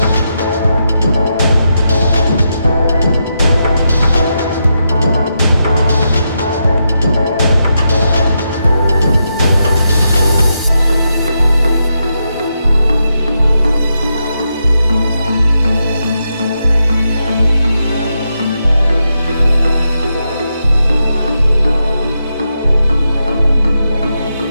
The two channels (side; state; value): both; inverted; correlation -0.84